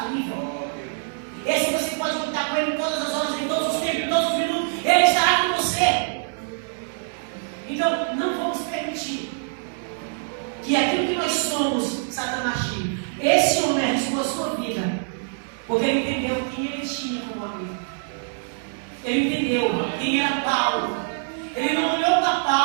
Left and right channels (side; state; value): left; silent; 61 dB below the other